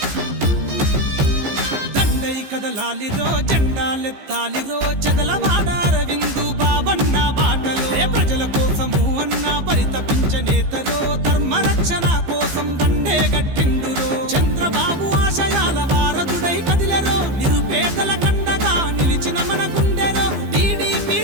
కదలాలిరో జెండాలెత్తాలిరో చదలవాడారవిందు బాబన్న బాటలో ప్రజల కోసము అన్న పరితపించనేతరో ధర్మరక్షణ కోసం దండే గట్టిండురో చంద్రబాబు ఆశయాల వారధుడై కదిలెరో నిరుపేదల కండగా నిలిచిన మన గుండెరో టీడీపీ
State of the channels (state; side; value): late; left; 15 ms